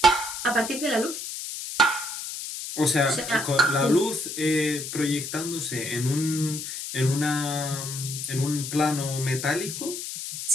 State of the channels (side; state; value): left; noise; hiss, 7 dB below the sound